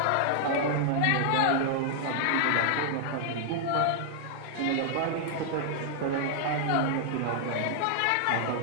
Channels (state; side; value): different; both; correlation -0.01